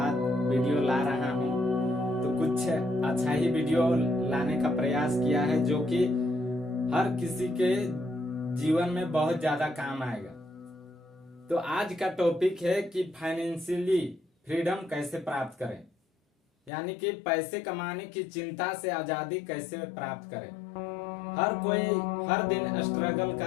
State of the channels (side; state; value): right; drops out; at 16.7 s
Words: वीडियो ला रहा हूँ, तो कुछ अच्छा ही वीडियो लाने का प्रयास किया है जो कि हर किसी के जीवन में बहुत ज्यादा काम आएगा। तो आज का टॉपिक है कि फाइनेंशियली फ्रीडम कैसे प्राप्त करें, यानी कि पैसे कमाने की चिंता से आजादी कैसे प्राप्त करें। हर कोई हर दिन स्ट्रगल